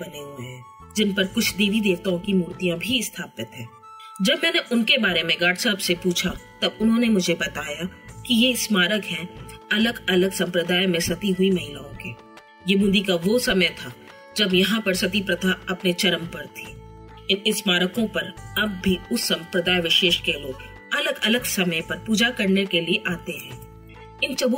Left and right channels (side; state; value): both; identical; correlation 1.00